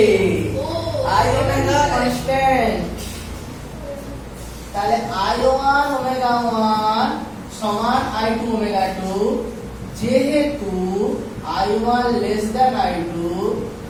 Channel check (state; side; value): identical; both; correlation 1.00